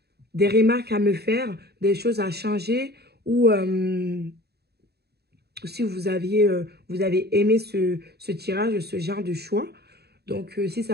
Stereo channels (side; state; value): left; late; 0.47 ms